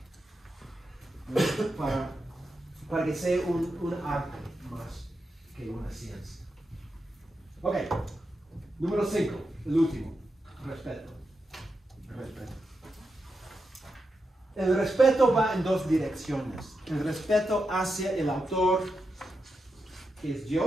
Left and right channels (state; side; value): normal; both; correlation 0.87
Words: ¿no? para que sea un arte más que una ciencia. Ok, número 5, el último, respeto. El respeto va en dos direcciones. El respeto hacia el autor, que es